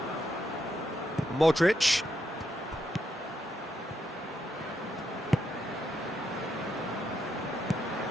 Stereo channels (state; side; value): normal; both; correlation 0.80